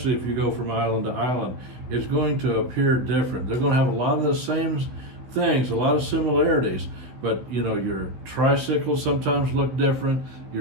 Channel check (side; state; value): left; late; 16 ms